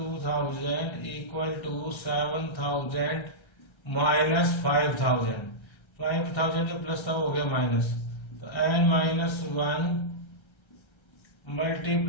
equal to 7,000 minus 5,000। 5,000 जो प्लस था वो हो गया माइनस, तो n minus 1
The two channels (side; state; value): right; late; 1.3 ms